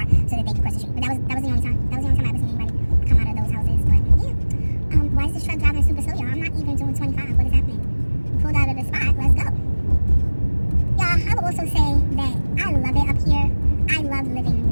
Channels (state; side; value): inverted; both; correlation -1.00